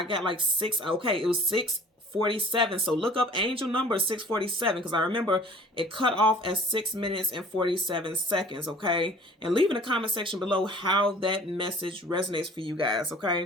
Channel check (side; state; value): both; normal; correlation 0.48